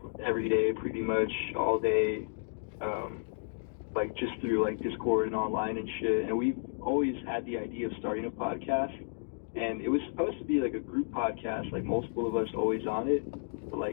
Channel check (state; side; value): silent; right; digital silence